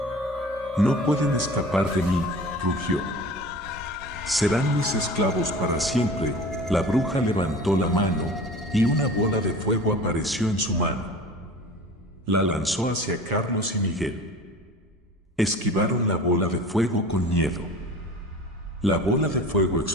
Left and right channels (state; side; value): normal; both; correlation 0.40